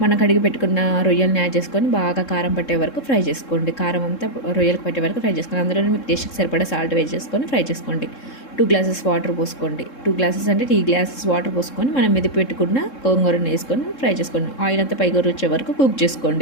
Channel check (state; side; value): late; right; 3.7 ms